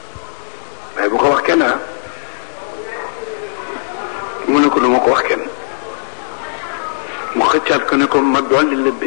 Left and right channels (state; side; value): silent; right; 68 dB below the other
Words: waaye bu ko wax kenn mu ne ko du ma ko wax kenn mu xëccaat ko ne ko ma dolli la